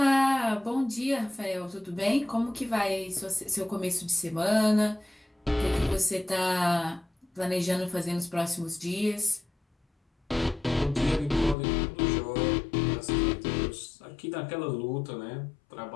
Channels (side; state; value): right; drops out; at 11.6 s